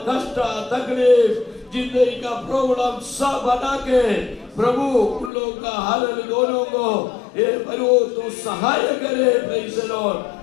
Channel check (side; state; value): right; drops out; at 5.3 s